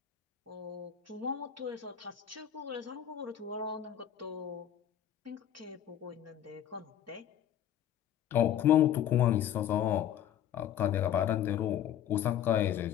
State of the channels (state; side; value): quieter; right; 10.4 dB